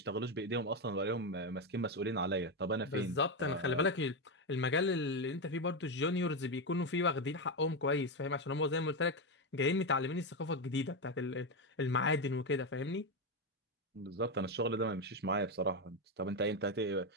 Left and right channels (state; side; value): normal; both; correlation 0.09